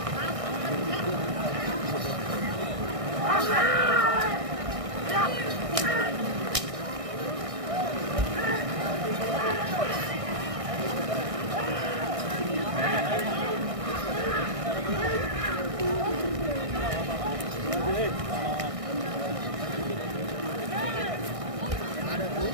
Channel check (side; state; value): left; late; 1.6 ms